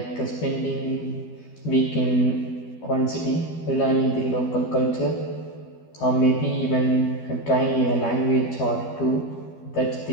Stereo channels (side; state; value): right; late; 12 ms